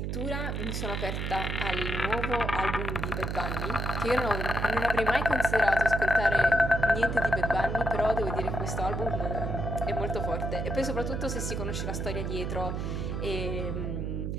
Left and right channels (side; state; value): right; noise; hum, 2 dB below the sound